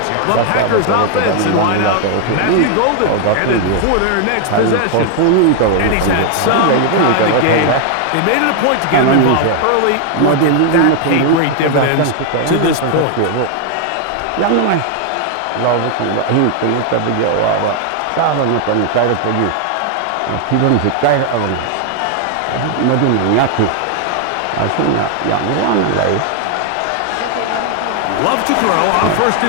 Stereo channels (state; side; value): different; both; correlation 0.00